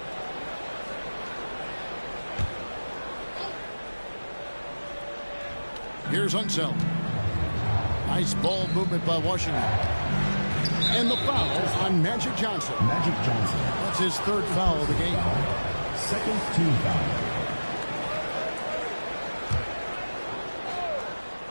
Here's Unseld. Nice ball movement by Washington. And the foul on Magic Johnson. Magic Johnson. That's his third foul of the game. Second team foul.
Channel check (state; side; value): inverted; both; correlation -1.00